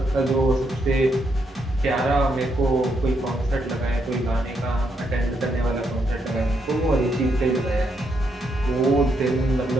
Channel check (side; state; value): both; normal; correlation 0.78